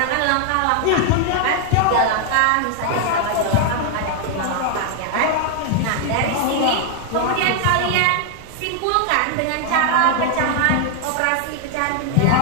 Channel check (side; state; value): both; different; correlation 0.00